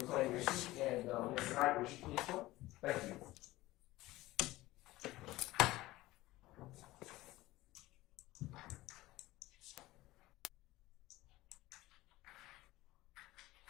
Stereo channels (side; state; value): right; quieter; 18.0 dB